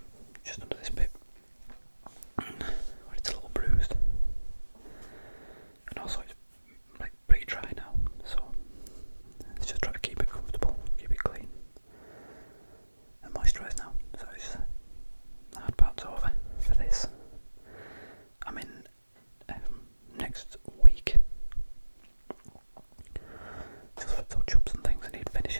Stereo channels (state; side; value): inverted; both; correlation -1.00